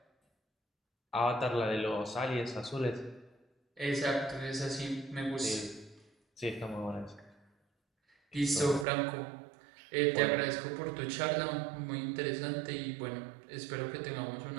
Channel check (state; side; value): drops out; left; at 8.8 s